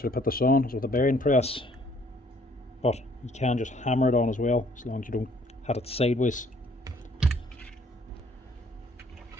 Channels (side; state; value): both; normal; correlation 0.61